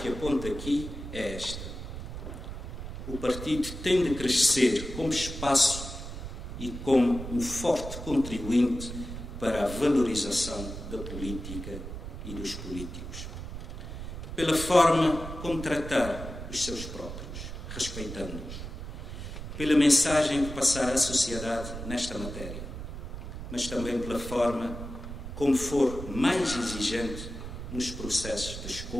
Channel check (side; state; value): right; noise; rumble, 8 dB below the sound